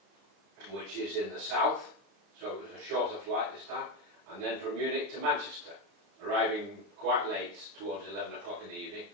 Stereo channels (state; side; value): late; left; 35 ms